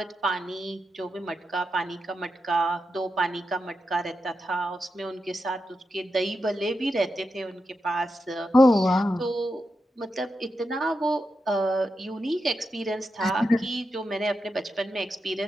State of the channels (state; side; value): normal; both; correlation 0.87